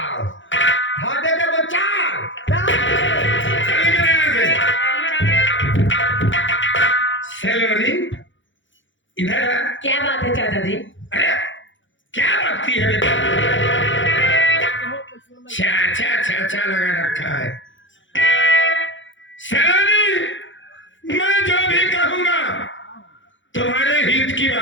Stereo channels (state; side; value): late; right; 0.56 ms